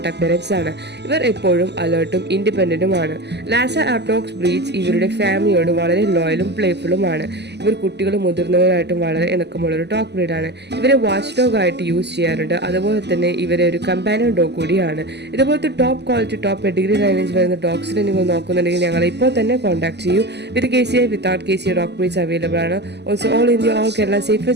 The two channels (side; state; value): left; late; 0.50 ms